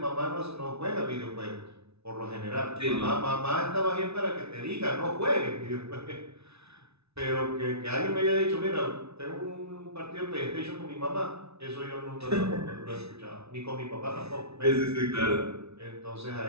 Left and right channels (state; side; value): late; left; 0.80 ms